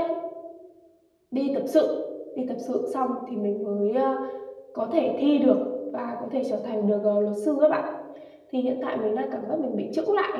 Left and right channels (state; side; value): identical; both; correlation 1.00